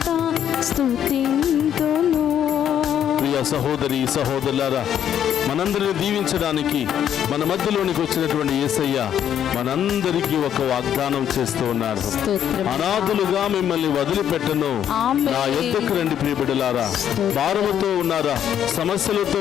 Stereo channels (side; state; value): right; quieter; 9.7 dB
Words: స్తుతింతును. ప్రియ సహోదరి సహోదరులారా, మనందరిని దీవించడానికి మన మధ్యలోనికి వచ్చినటువంటి యేసయ్య మనందరికీ ఒక వాగ్దానం చేస్తూ ఉన్నారు. అనాథులుగా మిమ్మల్ని వదిలిపెట్టను, నా యొద్దకు రండి ప్రియబిడ్డలారా. భారముతో ఉన్నారా, సమస్యలతో